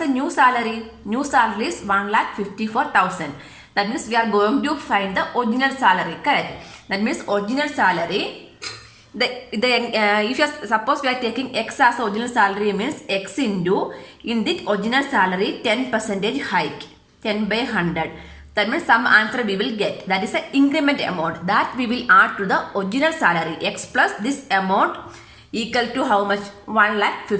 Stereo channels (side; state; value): both; identical; correlation 1.00